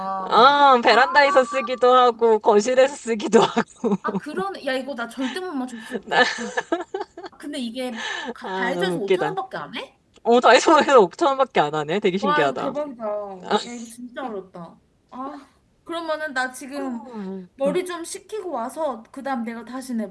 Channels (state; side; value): identical; both; correlation 1.00